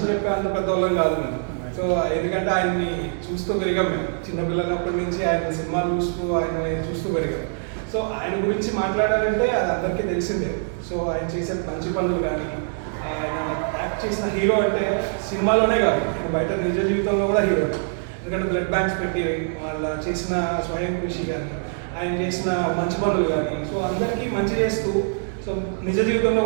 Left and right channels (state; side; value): silent; left; 58 dB below the other